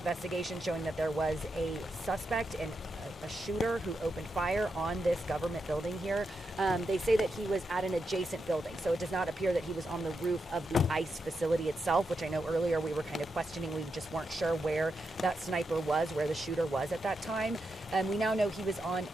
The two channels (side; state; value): both; normal; correlation 0.85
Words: showing that there was a suspect and a shooter who opened fire on this government building here. They say that he was at an adjacent building, so it does not appear that he was on the roof of the ICE facility itself, which I know earlier we were kind of questioning. We just weren't sure where that sniper was, where the shooter was at that time. We now know he was on